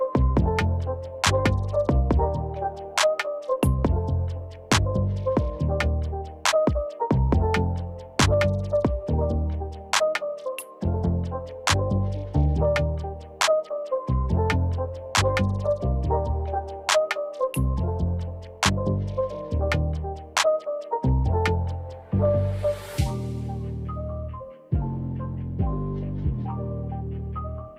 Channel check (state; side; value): identical; both; correlation 1.00